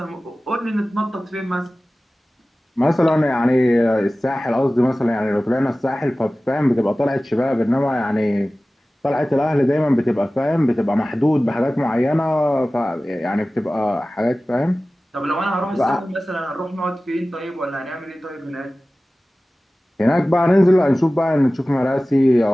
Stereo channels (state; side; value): normal; both; correlation 0.97